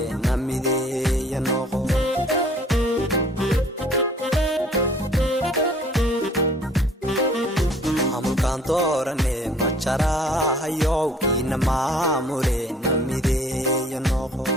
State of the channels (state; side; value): normal; both; correlation 0.56